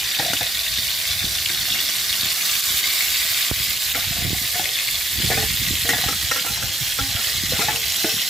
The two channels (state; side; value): normal; both; correlation 0.75